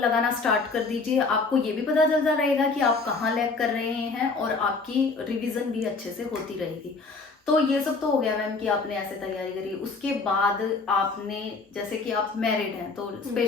स्टार्ट कर दीजिए। आपको ये भी पता चलता रहेगा कि आप कहाँ लैग कर रहे हैं और आपकी रिवीजन भी अच्छे से होती रहेगी। तो ये सब तो हो गया मैम कि आपने ऐसे तैयारी करी। उसके बाद आपने, जैसे कि आप मैरिड हैं, तो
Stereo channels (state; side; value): quieter; right; 4.1 dB